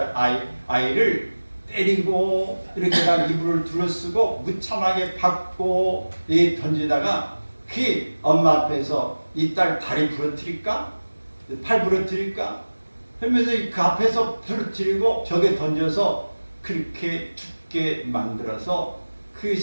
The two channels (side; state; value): both; inverted; correlation -1.00